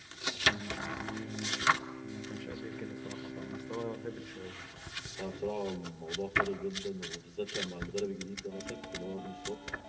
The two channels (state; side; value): identical; both; correlation 1.00